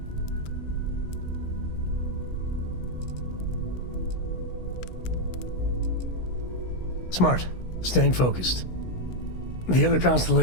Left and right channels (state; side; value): late; right; 16 ms